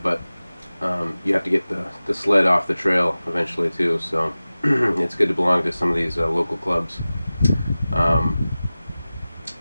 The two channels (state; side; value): inverted; both; correlation -0.97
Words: but you have to get the sled off the trail eventually too. So it's good to belong to some of these local clubs.